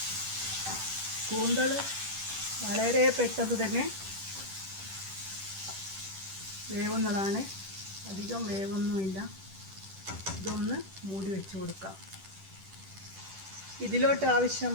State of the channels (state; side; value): late; left; 10 ms